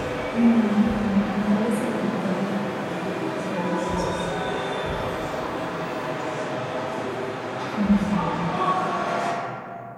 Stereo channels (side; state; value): both; identical; correlation 1.00